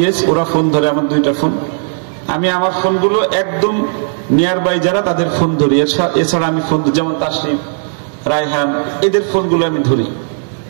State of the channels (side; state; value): left; silent; 70 dB below the other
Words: ওরা ফোন ধরে আমার 2টা ফোন। আমি আমার ফোনগুলো একদম নিয়ার বাই যারা তাদের ফোন ধরি, এছাড়া আমি ফোন যেমন তাসরিফ, রায়হান, এদের ফোনগুলো আমি ধরি।